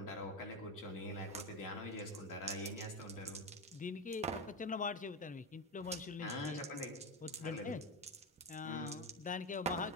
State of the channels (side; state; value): both; normal; correlation 0.16